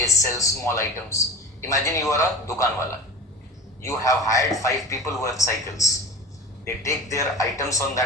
sell small items. Imagine you are a dukan wala. You have hired 5 people who have cycles. They take their items on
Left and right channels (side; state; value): both; normal; correlation 0.34